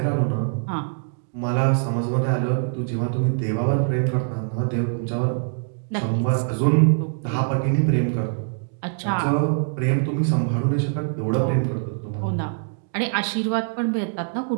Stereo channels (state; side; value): silent; left; digital silence